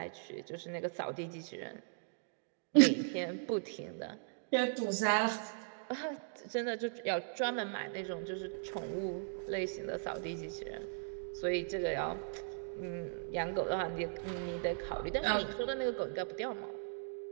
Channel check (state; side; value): silent; left; digital silence